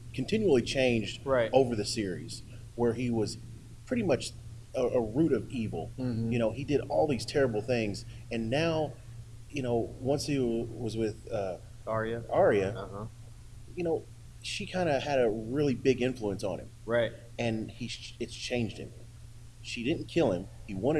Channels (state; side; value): identical; both; correlation 1.00